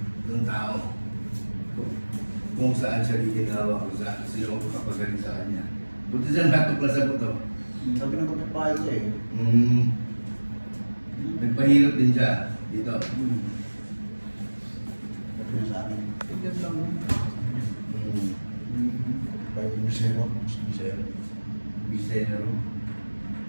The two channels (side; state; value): both; inverted; correlation -1.00